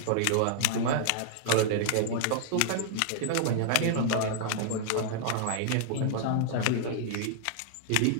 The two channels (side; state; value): both; different; correlation 0.00